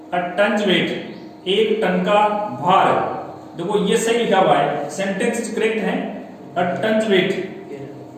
A tons weight, 1 ton का भार। देखो ये सही लिखा हुआ है, सेंटेंस करेक्ट है, अ टन्स वेट,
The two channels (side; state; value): both; identical; correlation 1.00